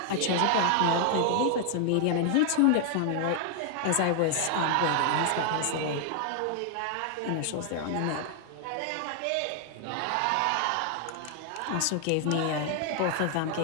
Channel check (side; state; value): both; different; correlation 0.00